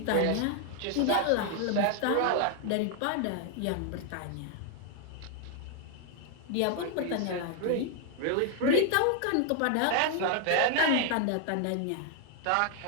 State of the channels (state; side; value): different; both; correlation 0.00